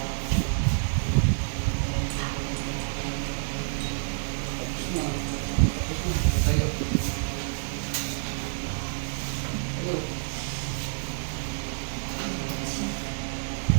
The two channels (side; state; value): left; silent; 58 dB below the other